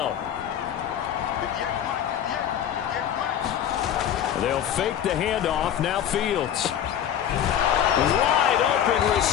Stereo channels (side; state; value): right; quieter; 9.9 dB